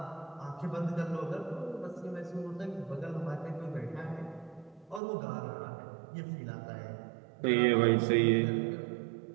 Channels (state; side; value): drops out; left; at 5.0 s